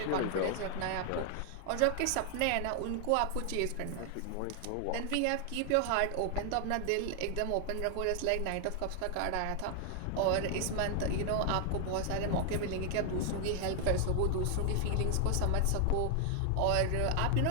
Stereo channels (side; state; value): both; different; correlation 0.00